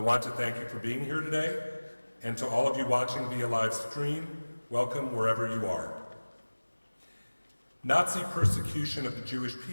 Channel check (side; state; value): both; inverted; correlation -1.00